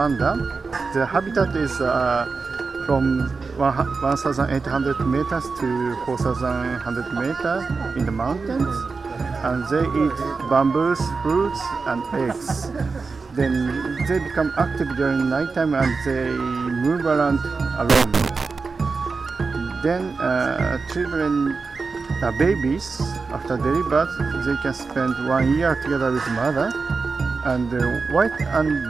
The habitat is from 1,800 meters to 4,100 meters in the mountains, and they eat bamboos, fruits, and eggs. Then they become active during nighttime and they move around alone. Then children, babies, after delivery, they can spend 1 year together with mother. And the white and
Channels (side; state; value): left; quieter; 4.5 dB